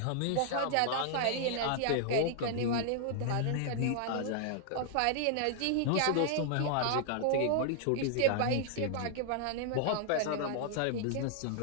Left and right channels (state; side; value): different; both; correlation -0.01